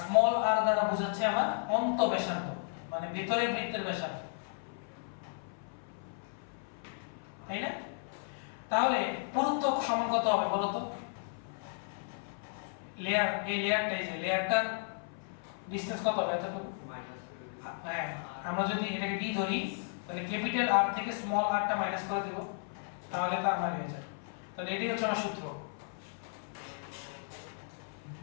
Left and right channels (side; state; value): right; silent; 55 dB below the other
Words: স্মল আর দ্বারা বোঝাচ্ছে আমার অন্তঃব্যাসার্ধ, মানে ভিতরের বৃত্তের ব্যাসার্ধ, তাই না? তাহলে পুরুত্ব সমান কত হবে বলো তো? লেয়ার, এই লেয়ারটা, এই যে লেয়ারটার ডিসটেন্স কত হবে? এতটুকু। হ্যাঁ, আমরা যদি এটাকে ডি ধরি তাহলে ক্যাপিটাল আর থেকে স্মল আরটা মাইনাস করে দেব, তাহলে তা আমার হয়ে যায়। তাহলে এটাই হচ্ছে আমার সূত্র,